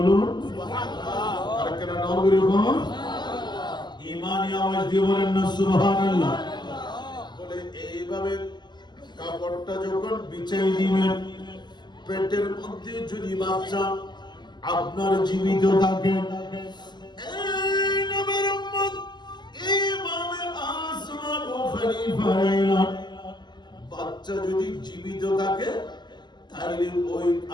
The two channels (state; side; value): late; right; 0.21 ms